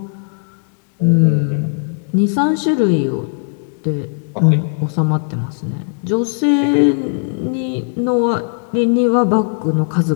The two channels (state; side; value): silent; right; digital silence